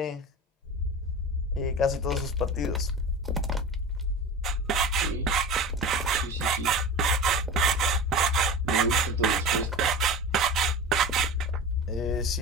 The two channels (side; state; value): both; normal; correlation 0.31